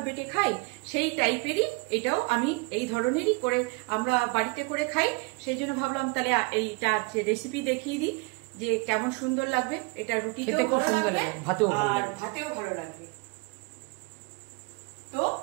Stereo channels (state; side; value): quieter; left; 27.6 dB